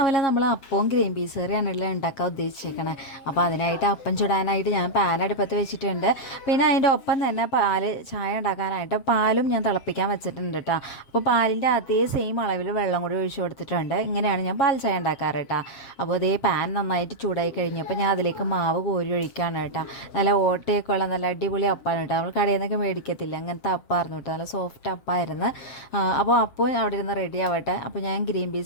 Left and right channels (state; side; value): late; right; 7.5 ms